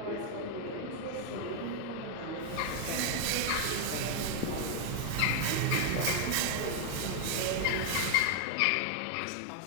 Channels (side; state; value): both; different; correlation 0.00